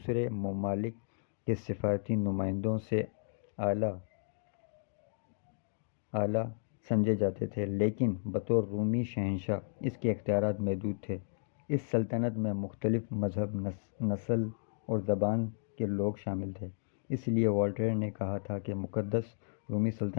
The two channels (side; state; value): right; silent; digital silence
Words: ممالک کے سفارتی نمائندوں سے اعلیٰ سمجھے جاتے تھے، لیکن بطور رومی شہنشاہ اس کے اختیارات محدود تھے۔ اس سلطنت میں مختلف مذہب، نسل اور زبان کے لوگ شامل تھے۔ اس لیے وولٹیر نے کہا تھا کہ مقدس رومی